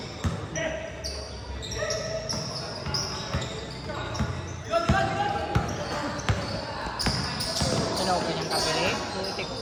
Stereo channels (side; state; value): both; identical; correlation 1.00